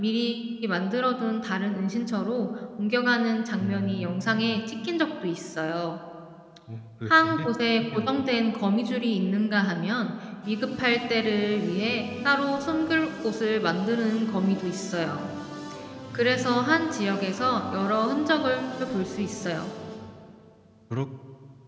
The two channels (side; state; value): both; identical; correlation 1.00